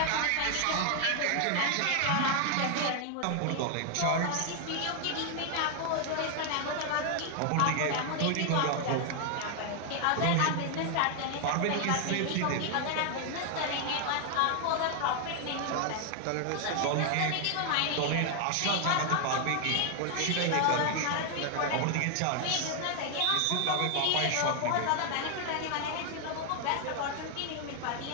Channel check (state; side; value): different; both; correlation 0.00